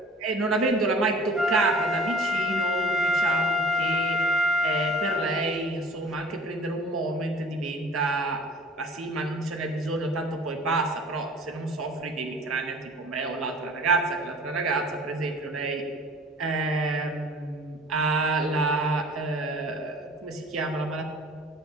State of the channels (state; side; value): normal; both; correlation 0.46